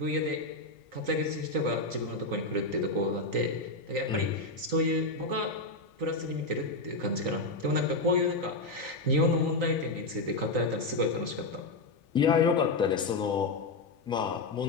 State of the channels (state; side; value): quieter; right; 3.2 dB